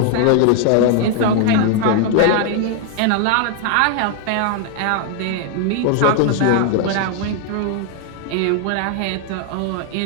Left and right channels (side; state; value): both; different; correlation 0.00